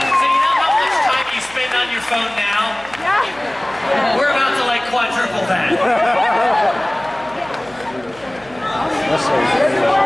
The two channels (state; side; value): noise; right; hum, 24 dB below the sound